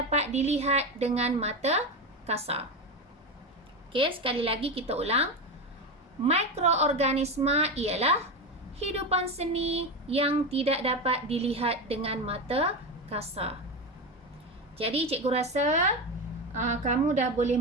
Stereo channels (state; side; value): normal; both; correlation 0.18